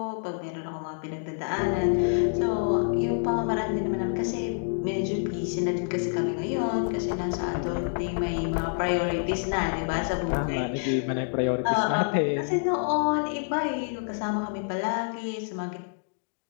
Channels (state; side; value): silent; right; digital silence